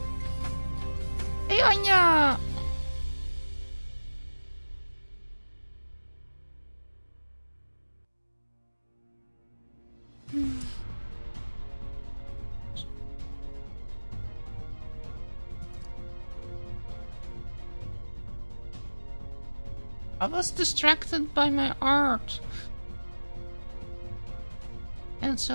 Hey, Anya. I was distracted by my art. And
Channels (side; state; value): both; inverted; correlation -1.00